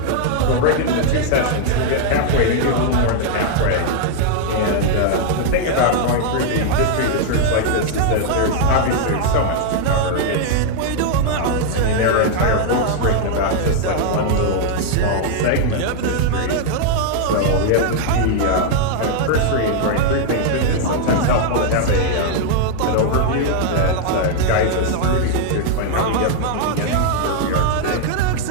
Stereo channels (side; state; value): both; different; correlation 0.00